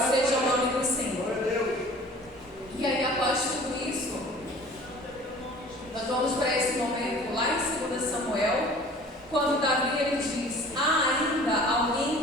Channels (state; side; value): normal; both; correlation 0.47